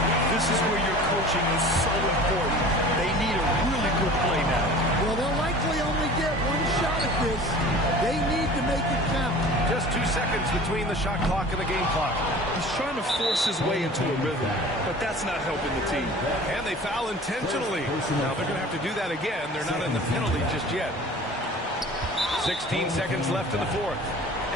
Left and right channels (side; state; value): both; normal; correlation 0.42